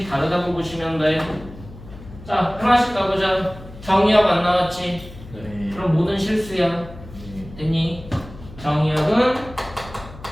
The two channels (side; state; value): left; noise; hum, 17 dB below the sound